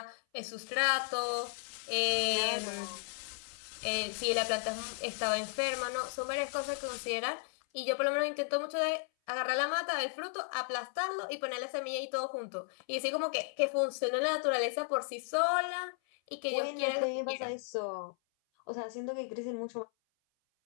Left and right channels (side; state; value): right; silent; 55 dB below the other